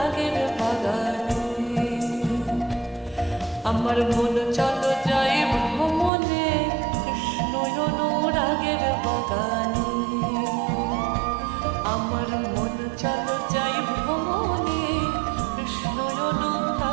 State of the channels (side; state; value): left; drops out; at 6.1 s